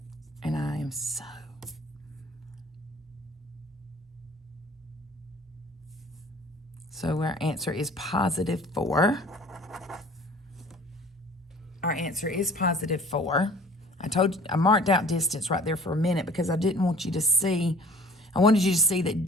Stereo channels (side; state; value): both; normal; correlation 0.49